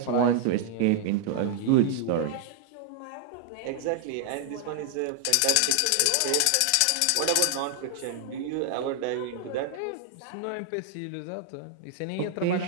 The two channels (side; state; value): both; different; correlation 0.00